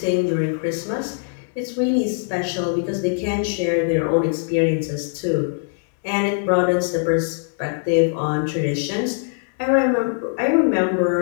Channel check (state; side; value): silent; right; 62 dB below the other